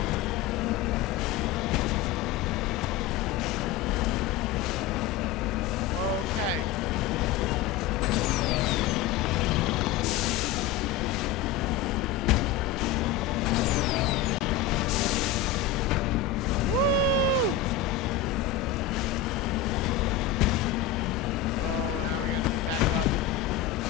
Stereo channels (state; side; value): quieter; right; 9.6 dB